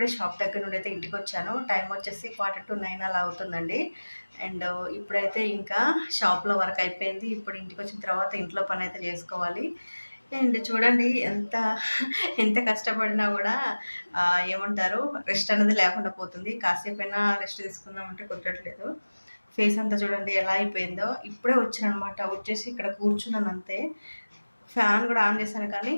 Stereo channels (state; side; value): inverted; both; correlation -1.00